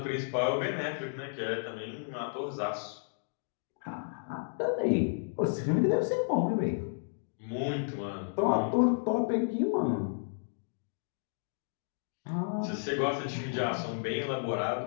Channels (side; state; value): right; silent; digital silence